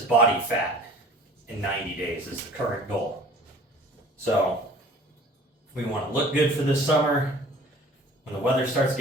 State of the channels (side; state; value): both; normal; correlation 0.48